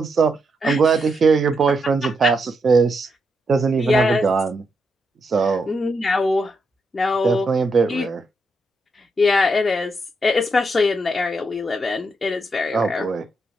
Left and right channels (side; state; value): both; normal; correlation 0.81